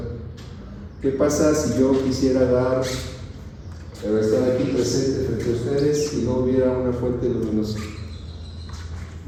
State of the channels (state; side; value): identical; both; correlation 1.00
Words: ¿Qué pasa si yo quisiera estar aquí presente frente a ustedes y no hubiera una fuente luminosa?